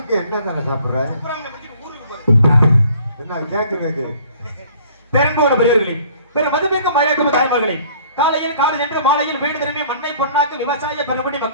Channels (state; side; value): inverted; both; correlation -0.55